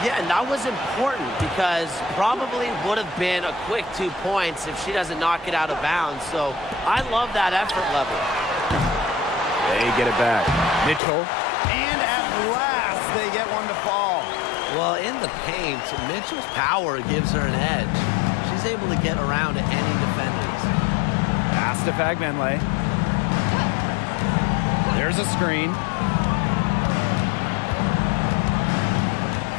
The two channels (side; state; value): right; drops out; at 11.0 s